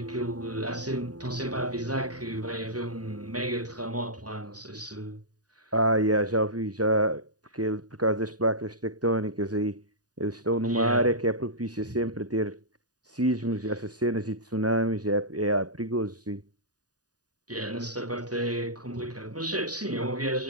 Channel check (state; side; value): late; left; 0.68 ms